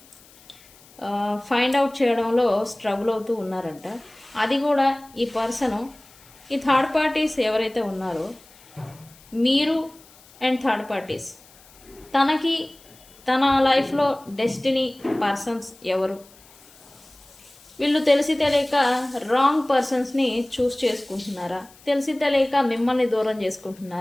ఫైండ్ అవుట్ చేయడంలో స్ట్రగుల్ అవుతూ ఉన్నారంట. అది కూడా ఈ పర్సను ఈ థర్డ్ పార్టీస్ ఎవరైతే ఉన్నారో మీరు అండ్ థర్డ్ పార్టీస్, తనకి తన లైఫ్లో డెస్టినీ పర్సన్స్ ఎవరు, వీళ్ళు తెలిసి తెలియక రాంగ్ పర్సన్స్ని చూస్ చేసుకుంటున్నారా, తెలిసి తెలియక మిమ్మల్ని దూరం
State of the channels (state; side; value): noise; left; hiss, 25 dB below the sound